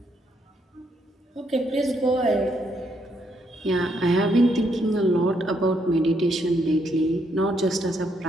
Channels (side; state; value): both; normal; correlation 0.75